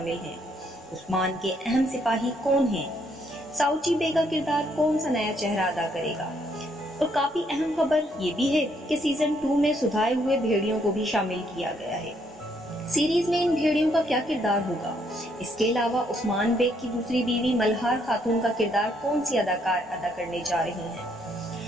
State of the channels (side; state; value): both; normal; correlation 0.71